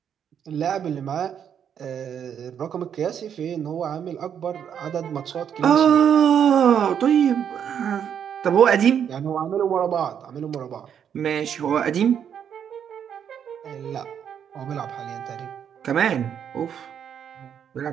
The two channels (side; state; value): left; quieter; 8.4 dB